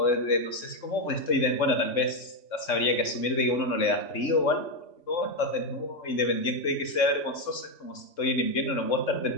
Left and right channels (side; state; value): right; late; 3.6 ms